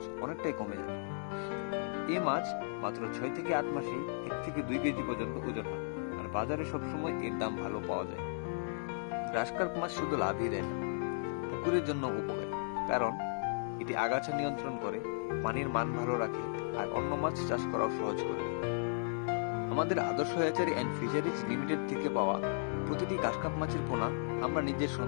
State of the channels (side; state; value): right; silent; digital silence